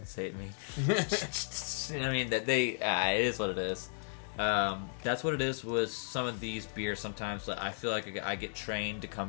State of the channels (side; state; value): right; silent; 55 dB below the other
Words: me. You know what I mean? That it is what it is. That's what it is with some of these beers. Sometimes I feel like I get trained to